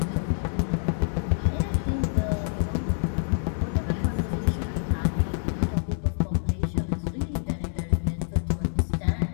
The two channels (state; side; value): silent; right; digital silence